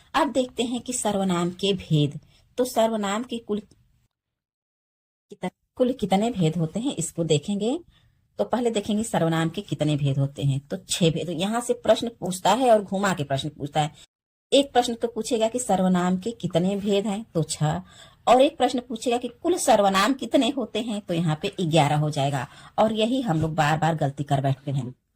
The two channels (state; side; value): identical; both; correlation 1.00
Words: अब देखते हैं कि सर्वनाम के भेद। तो सर्वनाम के कुल कितने भेद होते हैं, इसको देखेंगे। तो पहले देखेंगे सर्वनाम के कितने भेद होते हैं। तो 6 भेद। यहाँ से प्रश्न पूछता है और घुमा के प्रश्न पूछता है। एक प्रश्न तो पूछेगा कि सर्वनाम के कितने भेद हैं, तो 6। और एक प्रश्न पूछेगा कि कुल सर्वनाम कितने होते हैं, तो यहाँ पे 11 हो जाएगा। और यही हम लोग बार बार गलती कर बैठते हैं